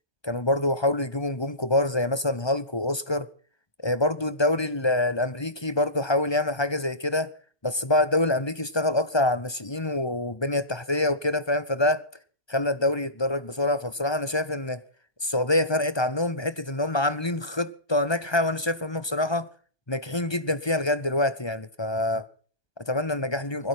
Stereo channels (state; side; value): late; right; 1.2 ms